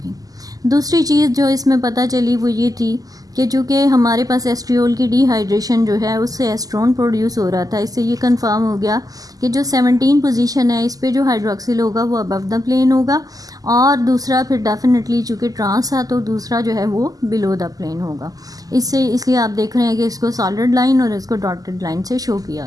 दूसरी चीज़ जो इसमें पता चली वो ये थी कि चूँकि हमारे पास एस्ट्रियोल की डिहाइड्रेशन जो है उससे एस्ट्रोन प्रोड्यूस हो रहा था, इससे ये कंफर्म हो गया कि जो 17 पोजीशन है इस पे जो हाइड्रोक्सिल होगा वो अबव द प्लेन होगा, और दूसरा फिर डेफिनेटली चूँकि ट्रांस था तो दूसरा जो है वो बिलो द प्लेन होगा। इसलिए आप देख रहे हैं कि इसको सॉलिड लाइन और इसको डॉटेड लाइन से शो किया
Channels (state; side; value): late; left; 0.17 ms